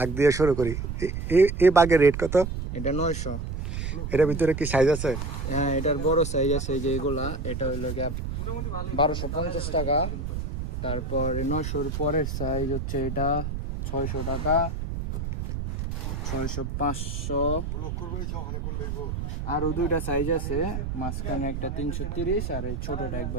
দিয়ে শুরু করি। এই বাগের রেট কত? এটা 900। এটার ভিতরে কি সাইজ আছে? হ্যাঁ, এটার বড় সাইজ আছে, এই যে এগুলা। এটা হইলো গিয়া 1250 টাকা। তারপর 900-র পরের সাইজ হচ্ছে এটা 600 টাকা, 600, 500। আরো দুইটা সাইজ আছে, মাঝখানে একটা 330 আর এই ছোটটা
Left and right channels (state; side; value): noise; right; rumble, 4 dB below the sound